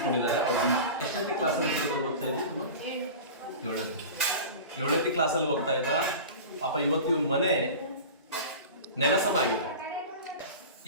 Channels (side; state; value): both; inverted; correlation -0.33